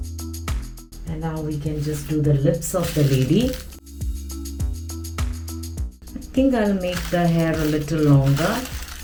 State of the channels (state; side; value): identical; both; correlation 1.00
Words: And now we can just do the lips of the lady. I think I'll make the hair a little longer.